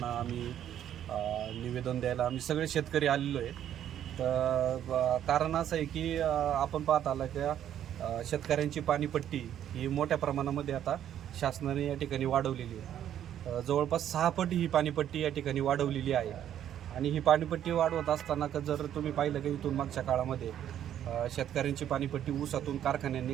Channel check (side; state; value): left; quieter; 10.6 dB